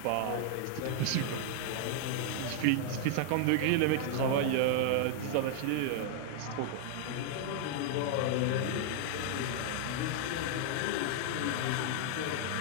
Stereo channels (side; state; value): both; different; correlation -0.01